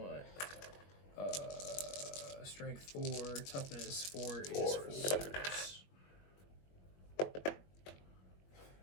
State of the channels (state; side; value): late; right; 21 ms